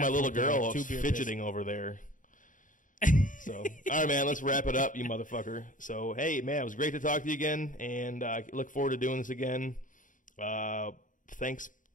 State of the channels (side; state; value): right; late; 0.38 ms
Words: little girl fidgeting over there. So, all right, man, let's wrap it up, you motherfucker. So, hey, man, it was great to talk to you again, and I look forward to doing this again. Thanks,